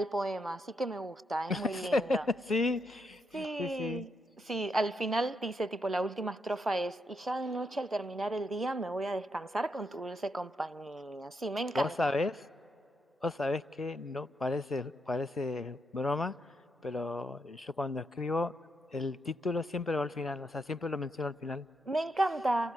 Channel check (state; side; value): normal; both; correlation 0.80